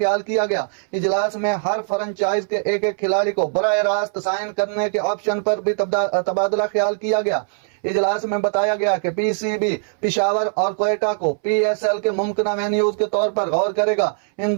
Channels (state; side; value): silent; left; 65 dB below the other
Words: किया गया। इजलास में हर फ्रेंचाइज के एक एक खिलाड़ी को बराह रास्त साइन करने के ऑप्शन पर भी तबादला ख्याल किया गया। इजलास में बताया गया कि PCB पिशावर और कोयटा को PSL के मुमकिन वेन्यूज के तौर पर गौर करेगा। इन